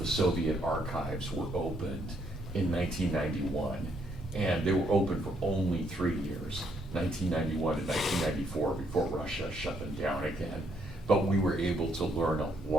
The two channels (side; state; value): both; normal; correlation 0.72